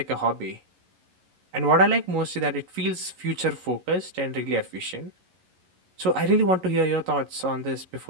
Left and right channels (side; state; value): left; late; 11 ms